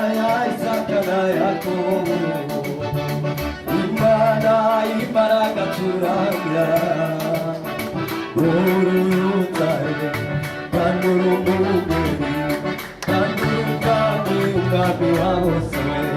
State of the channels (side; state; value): both; identical; correlation 1.00